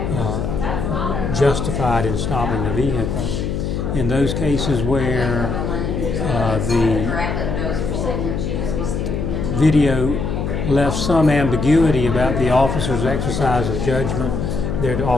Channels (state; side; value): noise; left; hum, 2 dB below the sound